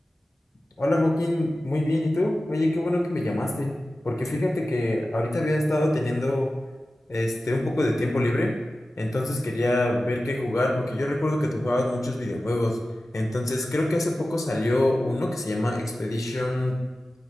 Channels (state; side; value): normal; both; correlation 0.95